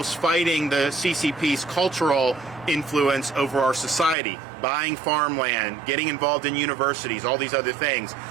fighting the CCP's cultural influence over our society, buying farmland, getting involved in universities, all these other things.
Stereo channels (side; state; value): left; drops out; at 4.2 s